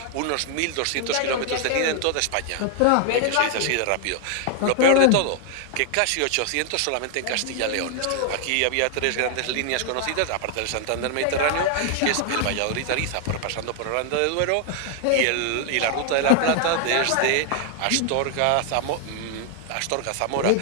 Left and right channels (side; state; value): both; different; correlation 0.00